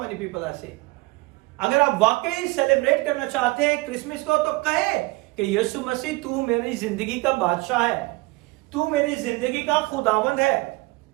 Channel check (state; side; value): quieter; left; 23.1 dB